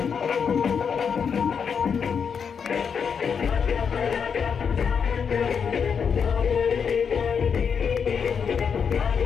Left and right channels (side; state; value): right; quieter; 6.6 dB